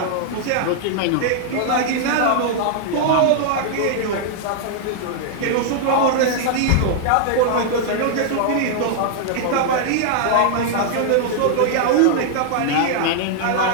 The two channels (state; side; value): different; both; correlation -0.01